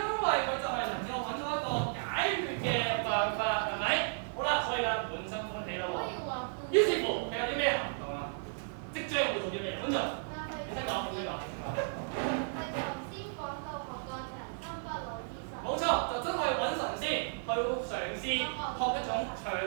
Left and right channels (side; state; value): left; silent; 55 dB below the other